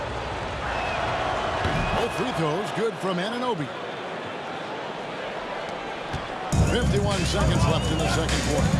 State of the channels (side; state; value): both; identical; correlation 1.00